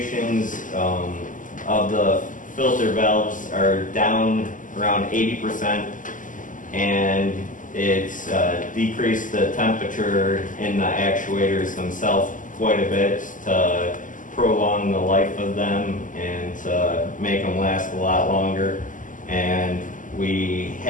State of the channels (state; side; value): late; right; 0.38 ms